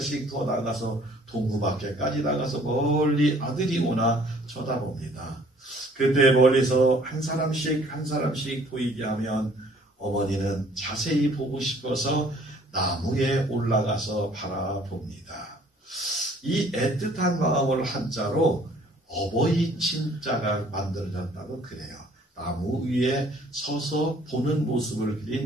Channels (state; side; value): normal; both; correlation 0.57